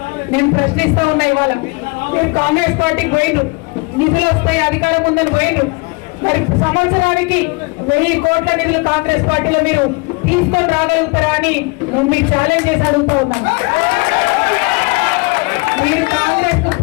నేను ప్రశ్నిస్తా ఉన్నా. ఇవాళ మీరు కాంగ్రెస్ పార్టీకి పోయిండ్రు, నిధులు వస్తాయి అధికారం ఉందని పోయిండ్రు. మరి సంవత్సరానికి 1000 కోట్ల నిధులు కాంగ్రెస్ పార్టీలో మీరు తీసుకొని రాగలుగుతారా అని నేను మీకు ఛాలెంజ్ చేసి అడుగుతా ఉన్నాను. మీరు కాంగ్రెస్ కు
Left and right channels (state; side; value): quieter; right; 28.1 dB